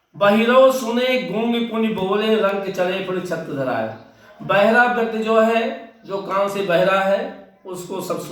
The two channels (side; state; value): both; identical; correlation 1.00